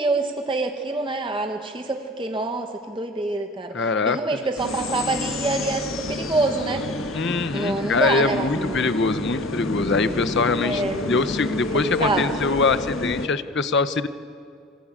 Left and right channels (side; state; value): both; normal; correlation 0.39